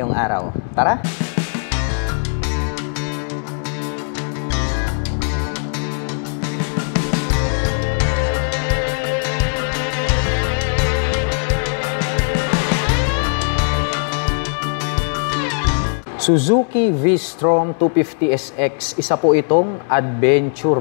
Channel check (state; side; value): silent; right; digital silence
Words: araw. Tara! Suzuki V-Strom 250SX, isa po itong